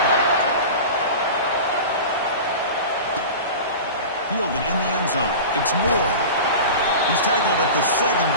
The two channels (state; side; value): inverted; both; correlation -0.32